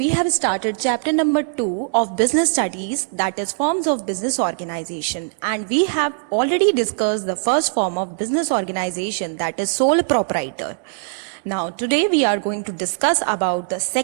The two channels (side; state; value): left; silent; digital silence